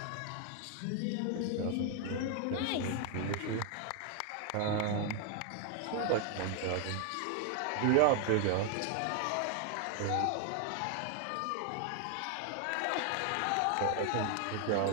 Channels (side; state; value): both; different; correlation 0.01